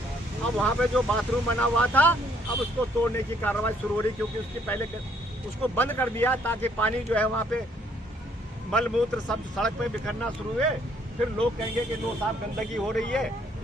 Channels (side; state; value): both; normal; correlation 0.66